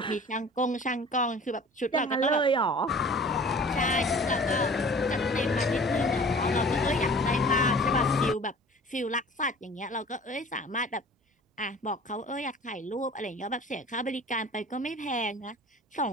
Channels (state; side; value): normal; both; correlation 0.45